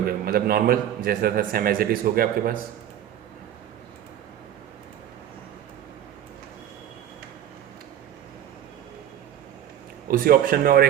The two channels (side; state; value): left; quieter; 10.9 dB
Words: मतलब नॉर्मल जैसा था सेम एज इट इज हो गया आपके पास। उसी ऑप्शन में और